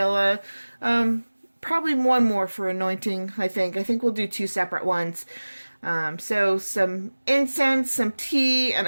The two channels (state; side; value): inverted; both; correlation -1.00